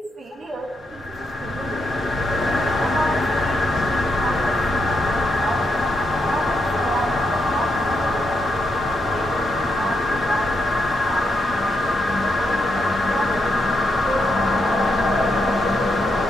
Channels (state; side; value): normal; both; correlation 0.81